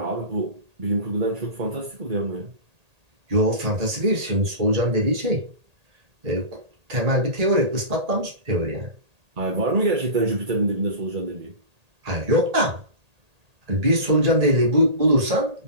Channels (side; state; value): left; late; 1.8 ms